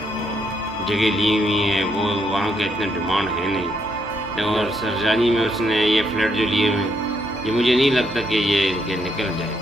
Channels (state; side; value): normal; both; correlation 0.75